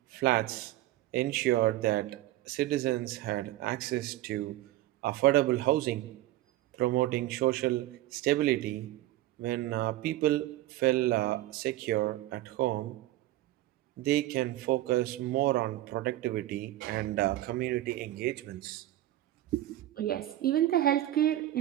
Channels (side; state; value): left; quieter; 15.2 dB